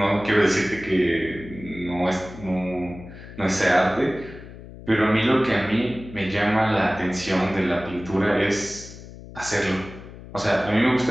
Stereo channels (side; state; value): left; noise; hum, 16 dB below the sound